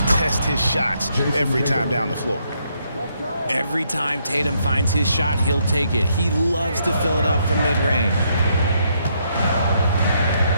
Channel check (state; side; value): inverted; both; correlation -0.74